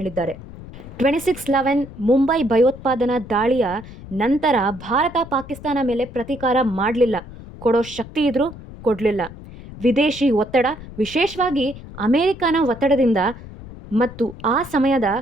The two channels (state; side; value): noise; left; rumble, 15 dB below the sound